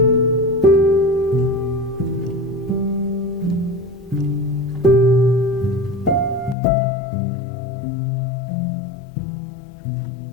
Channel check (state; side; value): drops out; right; at 6.6 s